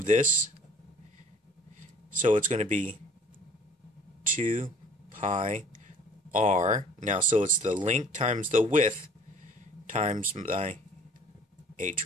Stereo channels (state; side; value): normal; both; correlation 0.52